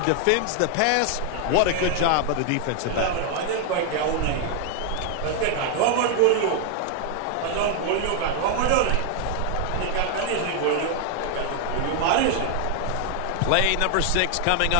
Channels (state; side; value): different; both; correlation 0.00